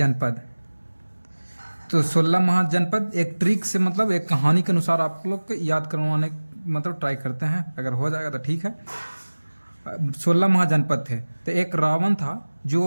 तो 16 महाजनपद एक ट्रिक से, मतलब एक कहानी के अनुसार आप लोग को याद करवाने मतलब ट्राई करते हैं। अगर हो जाएगा तो ठीक है। 16 महाजनपद थे। तो एक रावण था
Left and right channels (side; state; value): both; inverted; correlation -1.00